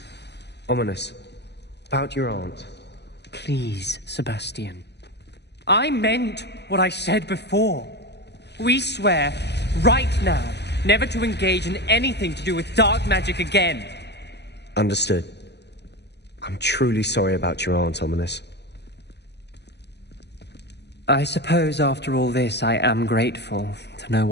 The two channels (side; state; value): right; late; 0.49 ms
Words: Ominous. About your aunt. Please, Sebastian. I meant what I said before. We swear, right now, never to engage in anything to do with dark magic again. Understood. I'm truly sorry about your aunt, Ominous. I suppose after all this, I am grateful to know